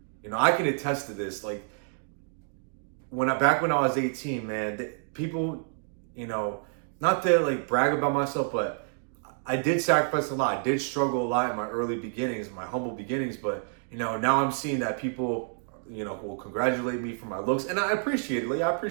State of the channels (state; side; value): silent; left; 59 dB below the other